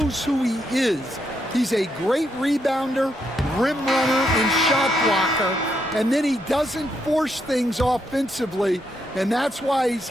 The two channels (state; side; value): normal; both; correlation 0.79